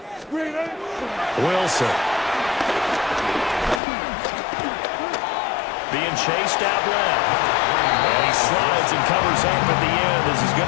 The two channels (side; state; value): right; drops out; at 3.8 s